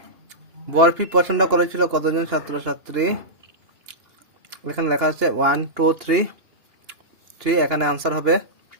বরফি পছন্দ করেছিল কতজন ছাত্রছাত্রী, এখানে লেখা আছে 1 2 3, এখানে আনসার হবে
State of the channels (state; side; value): late; left; 2.8 ms